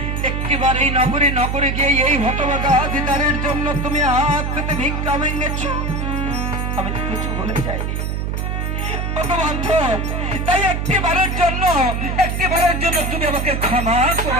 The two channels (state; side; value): noise; right; hum, 1 dB below the sound